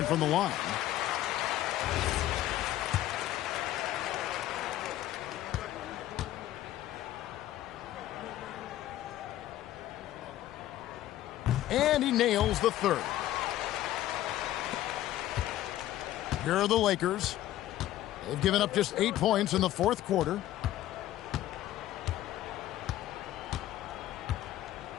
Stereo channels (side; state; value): right; quieter; 13.9 dB